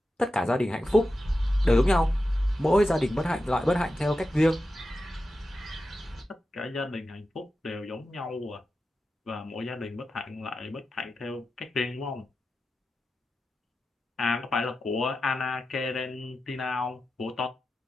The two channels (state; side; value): normal; both; correlation 0.91